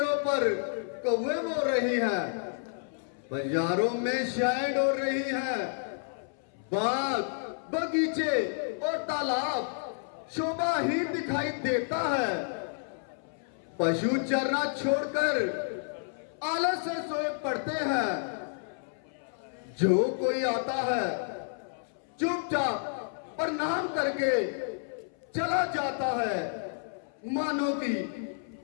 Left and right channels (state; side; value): silent; right; 57 dB below the other